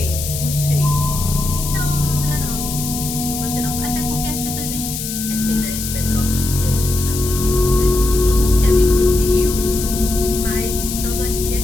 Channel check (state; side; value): noise; left; hiss, 6 dB below the sound